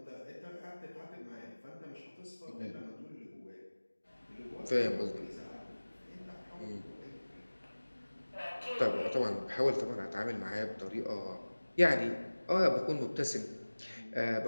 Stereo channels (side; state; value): both; inverted; correlation -1.00